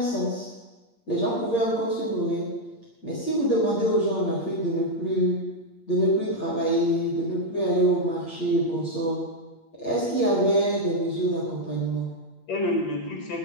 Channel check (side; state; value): right; late; 8.6 ms